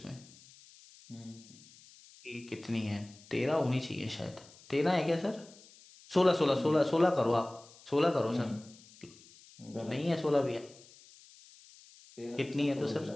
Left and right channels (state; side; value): noise; left; hiss, 23 dB below the sound